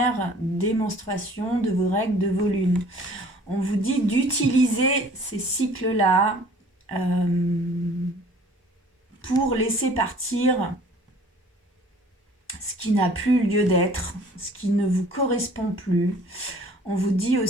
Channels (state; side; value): normal; both; correlation 0.52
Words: des menstruations, de vos règles, de vos lunes. On vous dit d'utiliser ces cycles-là pour laisser partir ce qui n'a plus lieu d'être, ce qui ne vous correspond plus. On vous dit